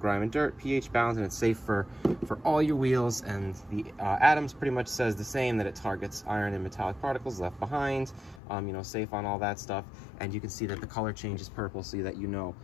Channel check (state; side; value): drops out; right; at 8.4 s